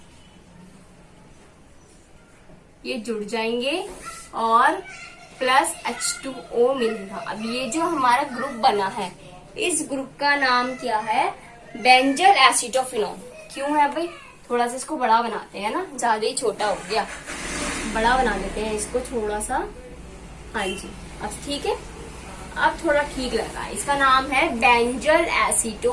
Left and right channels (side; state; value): both; identical; correlation 1.00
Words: ये जुड़ जाएंगे और प्लस H2O मिलेगा। अब ये जो हमारा ग्रुप बना है, इस ग्रुप का नाम क्या है? Benzyl acetophenone. क्यों है भाई? थोड़ा सा इसको बड़ा बनाते हैं ना, ज्यादा ही छोटा हो गया, बड़ा बना देते हैं इसको थोड़ा सा। हाँ जी, अब ठीक है, अब थोड़ा ठीक लग रहा है। इसका नाम है बेंजल